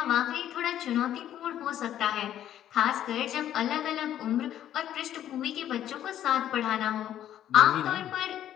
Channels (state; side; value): quieter; right; 11.3 dB